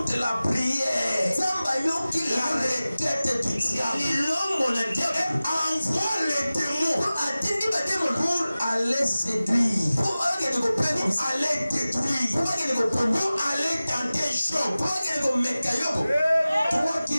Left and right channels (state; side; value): inverted; both; correlation -0.97